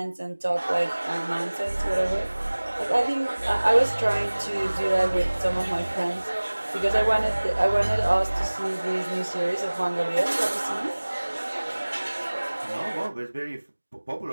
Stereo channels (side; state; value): both; inverted; correlation -1.00